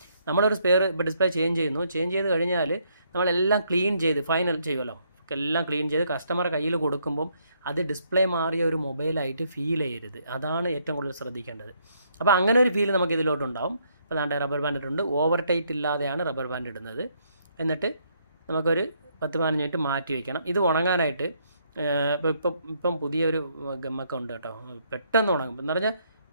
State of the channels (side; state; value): both; inverted; correlation -0.71